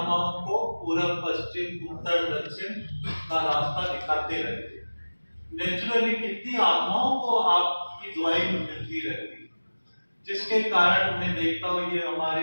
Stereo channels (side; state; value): both; inverted; correlation -1.00